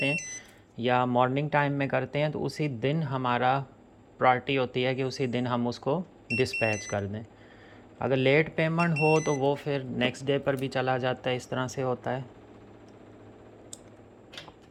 हैं या मॉर्निंग टाइम में करते हैं तो उसी दिन हमारा प्रायोरिटी होती है कि उसी दिन हम उसको डिस्पैच कर दें। अगर लेट पेमेंट हो तो वो फिर नेक्स्ट डे पर भी चला जाता है, इस तरह से होता है।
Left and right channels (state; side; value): identical; both; correlation 1.00